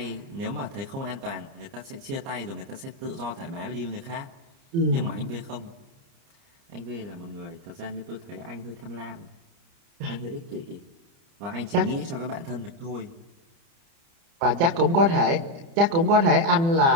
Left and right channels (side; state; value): left; late; 30 ms